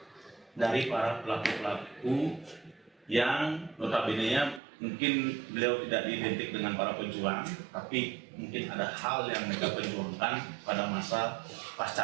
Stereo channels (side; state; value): left; drops out; at 4.6 s